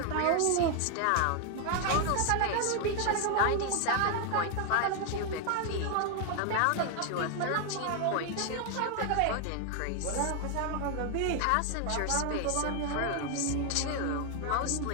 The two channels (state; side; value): different; both; correlation 0.00